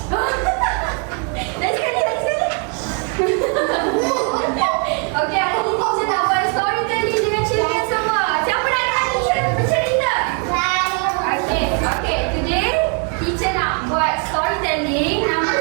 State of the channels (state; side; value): quieter; left; 38.7 dB